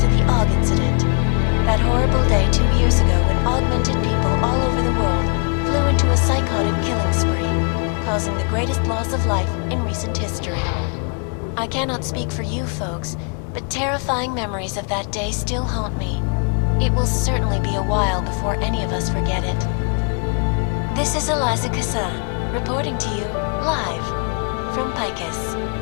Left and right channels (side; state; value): right; quieter; 38.5 dB